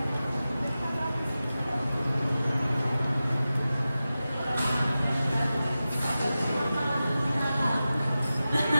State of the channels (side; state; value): both; inverted; correlation -0.94